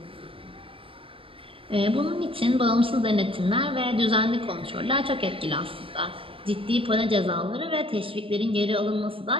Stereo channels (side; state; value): left; late; 0.26 ms